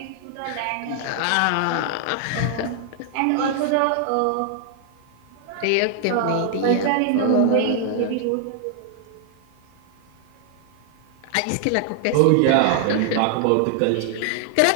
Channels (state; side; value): different; both; correlation 0.00